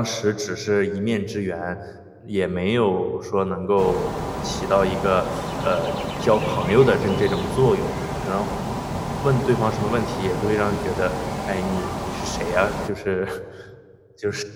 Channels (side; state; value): both; identical; correlation 1.00